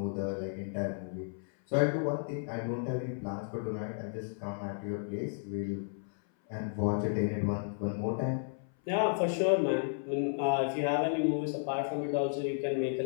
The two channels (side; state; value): right; silent; 56 dB below the other